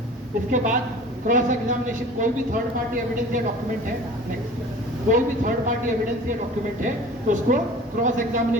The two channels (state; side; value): normal; both; correlation 0.42